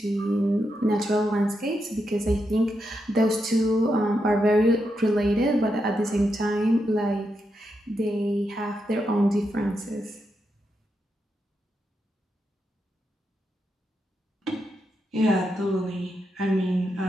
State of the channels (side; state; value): both; normal; correlation 0.84